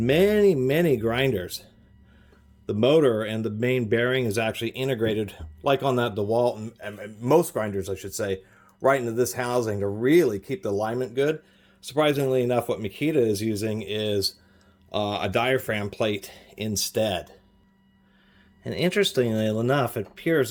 grinders, the motor and the main bearing is actually integrated, like on that DeWalt, and most grinders, I should say, right into this housing to really keep the alignment good. Surprisingly enough, what Makita is using is a diaphragm plate instead. And interestingly enough, it appears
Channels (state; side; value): identical; both; correlation 1.00